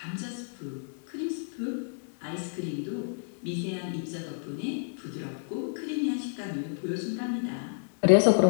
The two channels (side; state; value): right; silent; digital silence